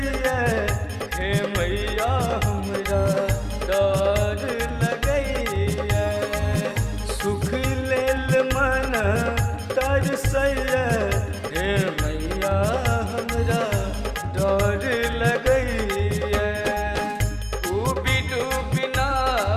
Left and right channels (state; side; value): identical; both; correlation 1.00